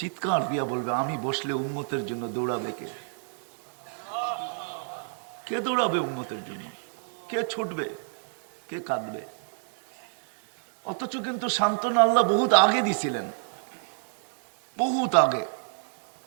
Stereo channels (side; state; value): left; silent; digital silence